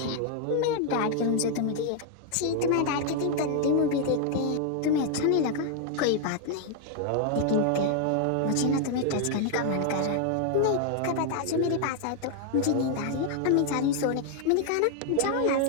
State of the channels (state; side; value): different; both; correlation 0.00